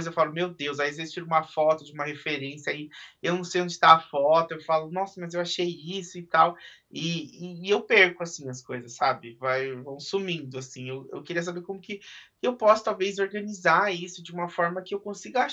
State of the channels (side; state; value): both; identical; correlation 1.00